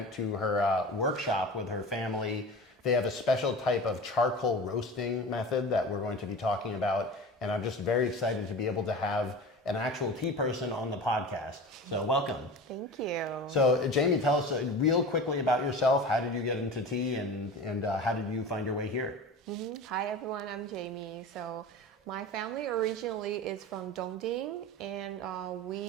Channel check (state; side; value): normal; both; correlation 0.33